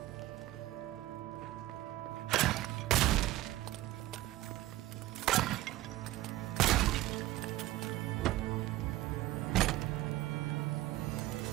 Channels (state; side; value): quieter; left; 16.1 dB